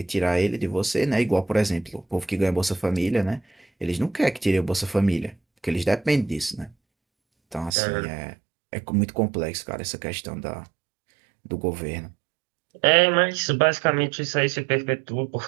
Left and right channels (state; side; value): drops out; left; at 7.8 s